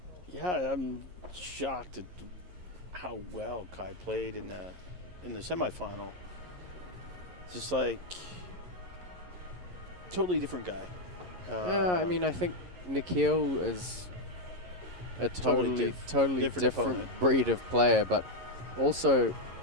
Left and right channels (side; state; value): left; late; 11 ms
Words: Yeah, I'm shocked at how well Kai played in the semifinal. Just like totally different guy. I mean, I think Nikhil is a totally different opponent. breed of player, but also